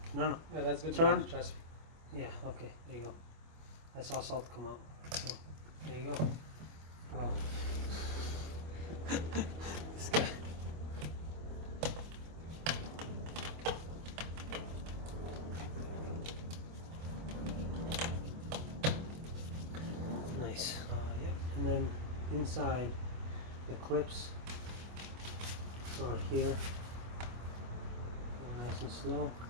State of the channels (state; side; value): late; left; 25 ms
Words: No, no. Yeah, that's good. Turn. Enough, trust me. Yeah, okay, there you go. I saw salt come out. So, there you go. Oh. This guy. Nice. Yep. And then inside the clips are here. Go nice and slow.